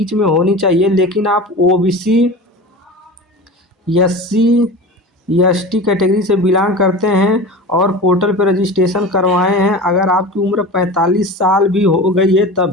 में होनी चाहिए, लेकिन आप ओबीसी, एससी, एसटी कैटेगरी से बिलोंग करते हैं और पोर्टल पर रजिस्ट्रेशन करवाए हैं। अगर आपकी उम्र 45 साल भी हो गई है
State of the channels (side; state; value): both; normal; correlation 0.32